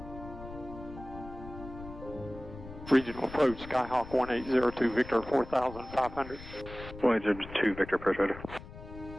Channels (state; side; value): noise; left; rumble, 14 dB below the sound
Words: Regional approach, Skyhawk 1802 Victor, 4,500. 1802 Victor, approach radar.